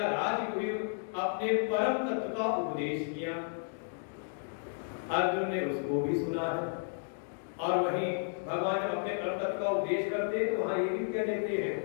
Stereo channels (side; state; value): right; silent; digital silence